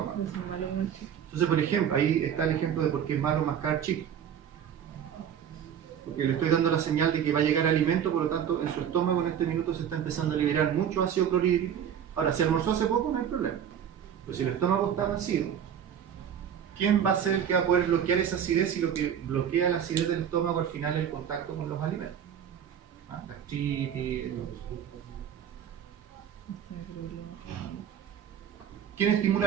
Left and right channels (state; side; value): quieter; left; 8.8 dB